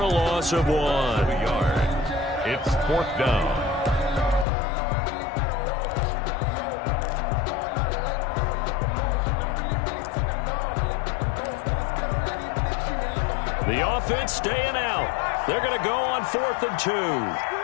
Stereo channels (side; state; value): right; drops out; at 4.5 s